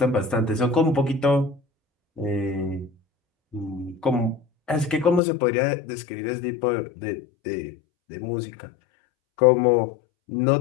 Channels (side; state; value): right; drops out; at 5.2 s